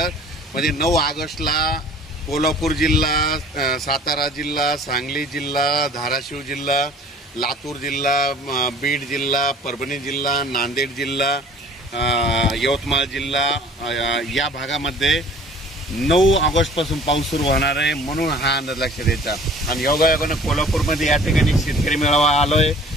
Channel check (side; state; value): both; normal; correlation 0.50